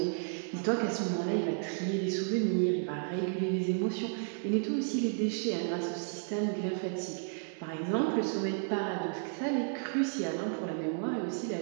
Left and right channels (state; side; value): silent; left; 56 dB below the other